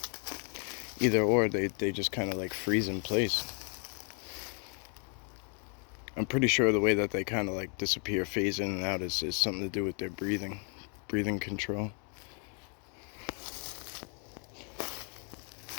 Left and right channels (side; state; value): right; quieter; 38.7 dB